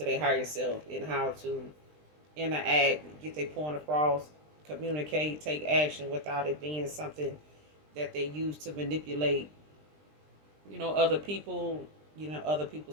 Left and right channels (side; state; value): left; late; 20 ms